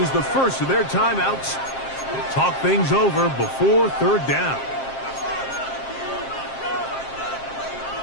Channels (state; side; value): late; right; 7.5 ms